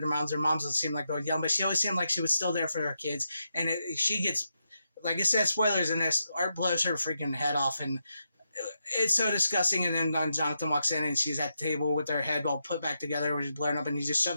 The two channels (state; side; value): inverted; both; correlation -0.85